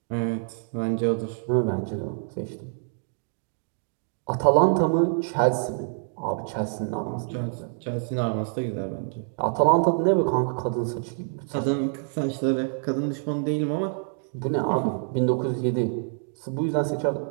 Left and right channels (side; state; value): left; silent; 61 dB below the other